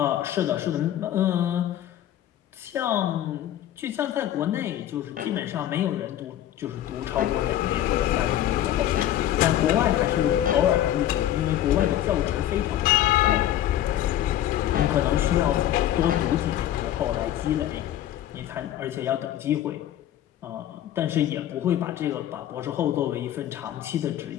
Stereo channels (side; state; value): right; quieter; 12.1 dB